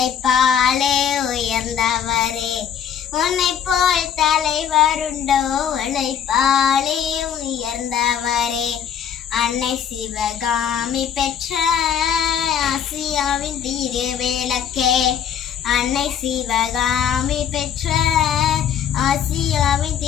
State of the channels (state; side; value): quieter; right; 8.6 dB